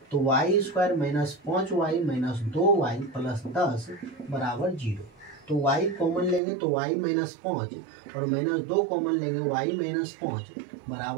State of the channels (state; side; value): drops out; left; at 6.4 s